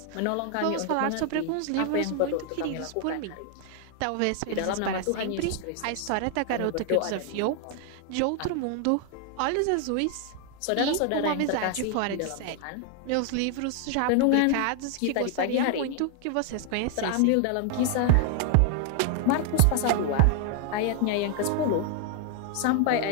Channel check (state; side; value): different; both; correlation 0.00